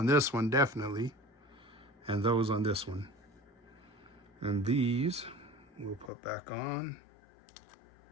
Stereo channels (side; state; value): right; drops out; at 6.1 s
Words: this one, definitely. And those on this one. And these we'll put back on.